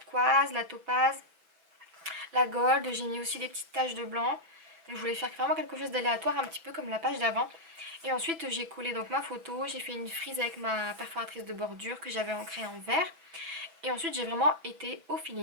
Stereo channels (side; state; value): left; late; 6.0 ms